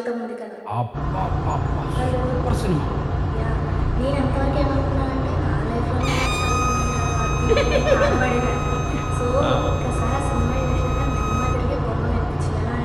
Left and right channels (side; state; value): both; identical; correlation 1.00